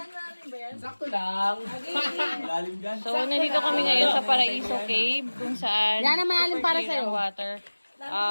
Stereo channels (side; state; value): both; inverted; correlation -1.00